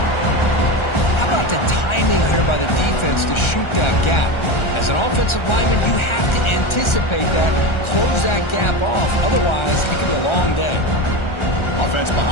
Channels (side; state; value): right; late; 1.3 ms